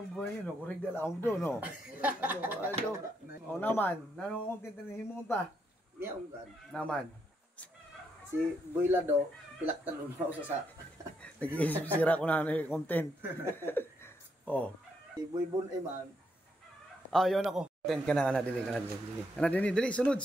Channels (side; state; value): both; normal; correlation 0.77